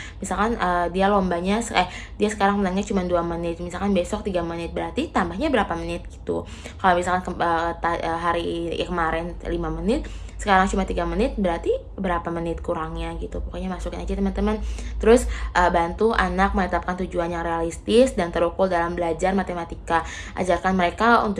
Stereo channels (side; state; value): both; identical; correlation 1.00